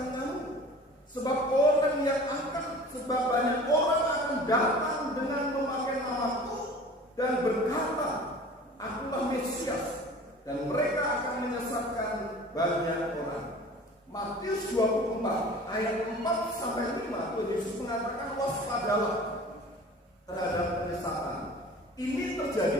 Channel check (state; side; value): normal; both; correlation 0.43